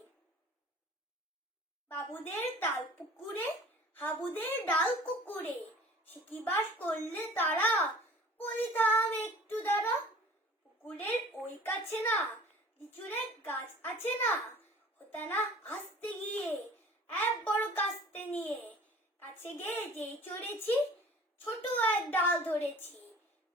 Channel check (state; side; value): normal; both; correlation 0.46